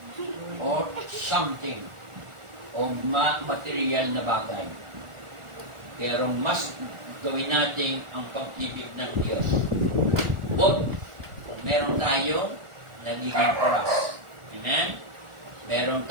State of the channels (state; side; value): late; left; 1.4 ms